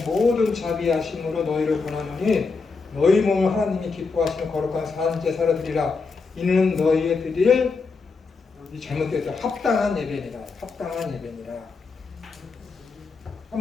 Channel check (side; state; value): right; quieter; 4.5 dB